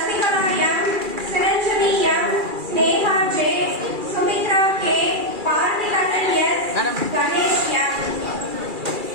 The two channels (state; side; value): late; left; 2.4 ms